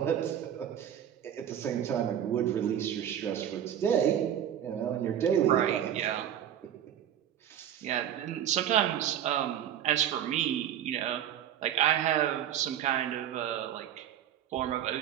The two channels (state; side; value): quieter; left; 10.3 dB